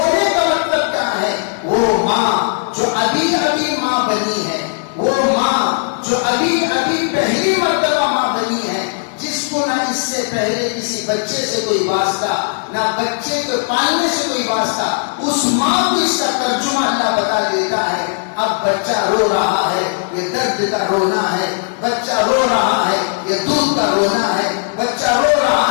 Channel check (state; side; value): silent; right; digital silence